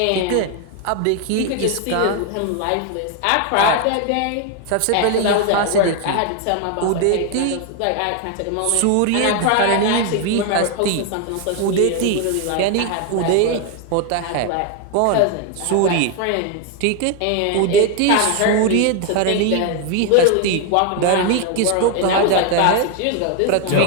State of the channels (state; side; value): different; both; correlation 0.01